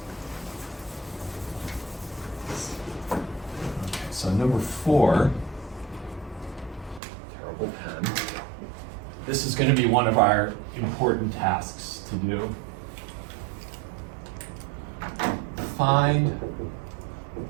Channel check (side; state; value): left; drops out; at 7.0 s